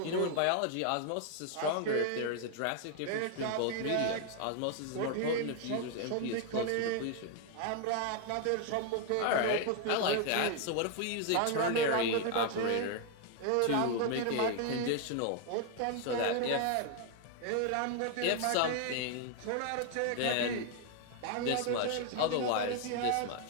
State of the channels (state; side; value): different; both; correlation 0.00